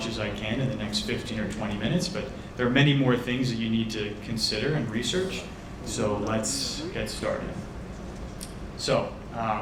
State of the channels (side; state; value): both; identical; correlation 1.00